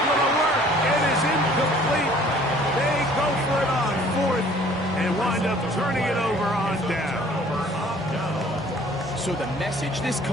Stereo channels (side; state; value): both; normal; correlation 0.54